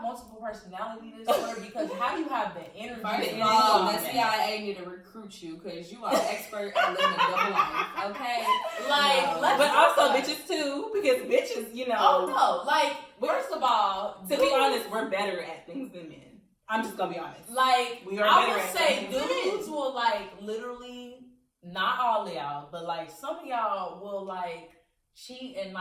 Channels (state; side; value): identical; both; correlation 1.00